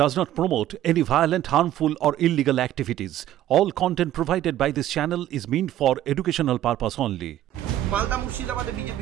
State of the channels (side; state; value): left; quieter; 12.9 dB